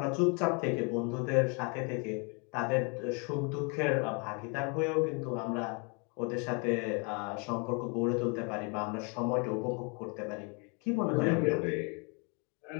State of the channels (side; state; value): right; quieter; 34.3 dB